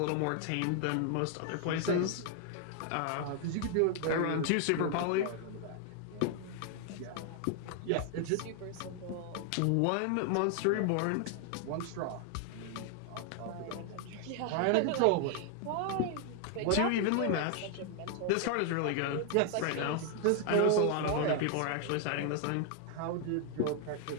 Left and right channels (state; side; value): different; both; correlation 0.00